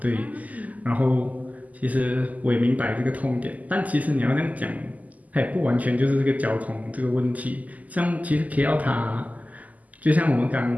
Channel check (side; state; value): left; late; 0.077 ms